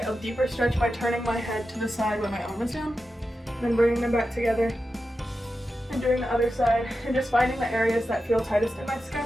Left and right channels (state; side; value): normal; both; correlation 0.91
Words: a deeper stretch by turning my head to the side when my arm is down, and then bringing them back together and doing the other side, and just finding the areas that feel tightest in my